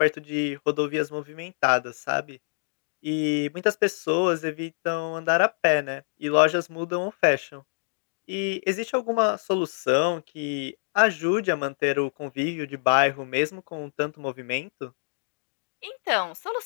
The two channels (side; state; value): right; silent; digital silence